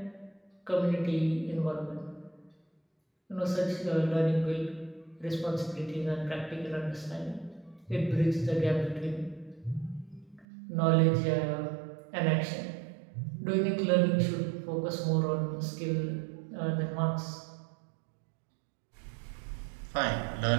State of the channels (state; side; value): drops out; left; at 10.5 s